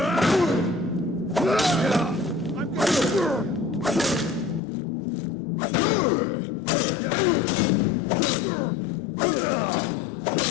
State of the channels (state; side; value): drops out; right; at 4.6 s